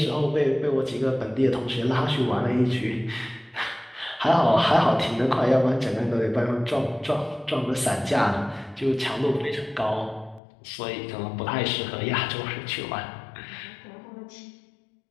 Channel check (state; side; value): drops out; right; at 10.4 s